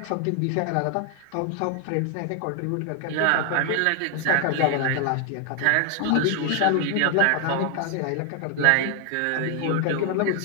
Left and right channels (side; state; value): both; different; correlation 0.00